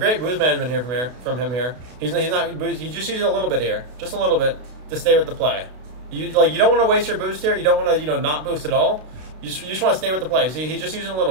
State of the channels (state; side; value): late; left; 32 ms